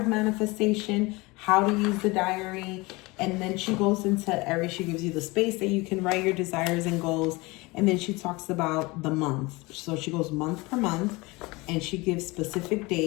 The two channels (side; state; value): right; quieter; 23.8 dB